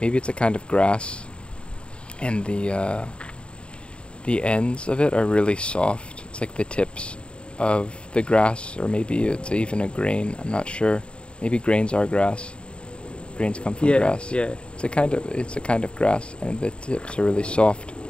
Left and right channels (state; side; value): late; right; 0.054 ms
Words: maybe it's a kind of grass, and the ends of it are really soft. It's like the tips of the grass, or maybe it's even a grain, I'm not sure. Maybe grains are grass. Grains come from grass. Yeah. It's a kind of grass, and the tips are really soft.